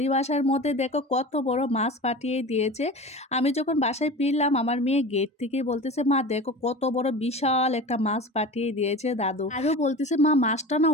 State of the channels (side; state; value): both; normal; correlation 0.33